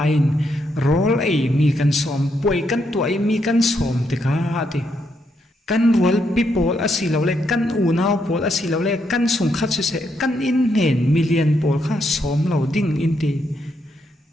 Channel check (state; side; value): normal; both; correlation 0.78